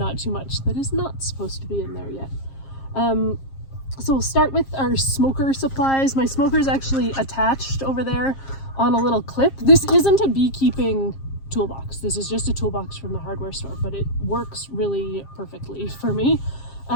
too much that is not supposed to be in there yet. So we'll start with our smoker supplies. My smoker is actually attached over there on a little clip. This isn't a beekeeping toolbox. This is just a toolbox from the hardware store, but it works really perfectly for me.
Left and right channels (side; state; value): right; late; 7.5 ms